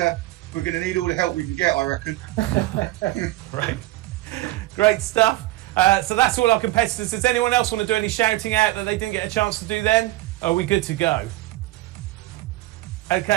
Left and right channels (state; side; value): quieter; left; 17.8 dB